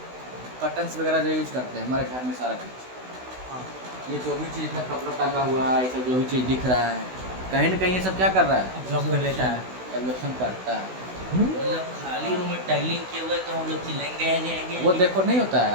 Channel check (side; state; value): left; late; 16 ms